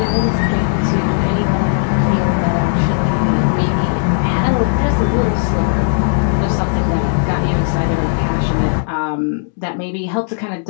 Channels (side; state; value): right; silent; digital silence